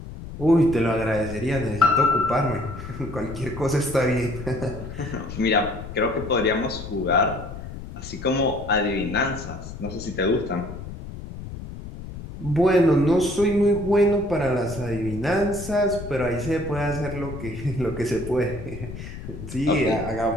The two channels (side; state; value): left; noise; rumble, 11 dB below the sound